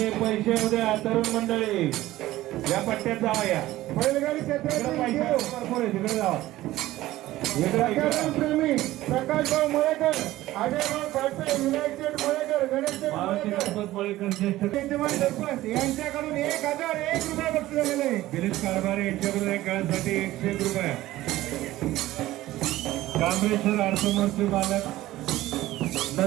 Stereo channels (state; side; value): quieter; left; 16.1 dB